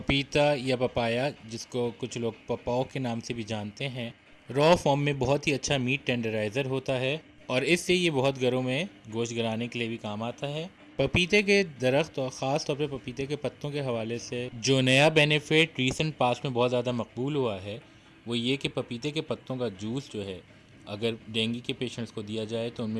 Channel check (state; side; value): identical; both; correlation 1.00